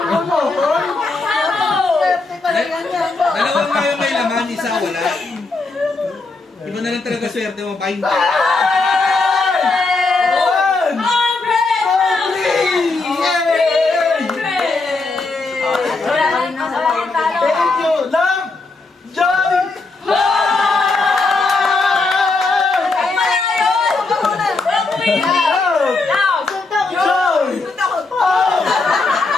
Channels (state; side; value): quieter; right; 3.6 dB